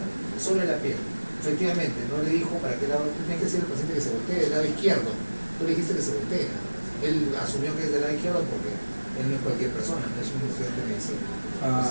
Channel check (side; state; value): both; inverted; correlation -1.00